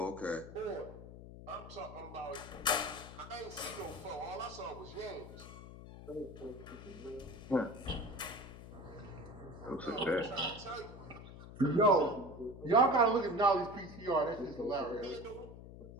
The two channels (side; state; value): left; noise; hum, 14 dB below the sound